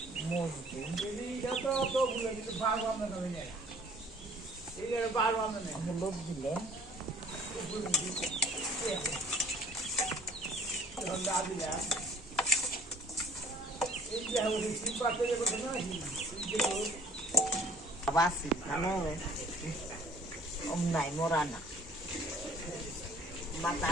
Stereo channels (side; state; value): both; normal; correlation 0.53